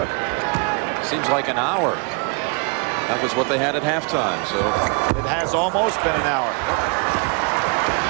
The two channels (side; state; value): left; quieter; 35.8 dB